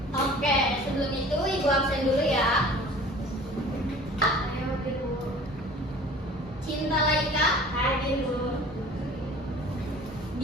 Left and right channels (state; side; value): normal; both; correlation 0.45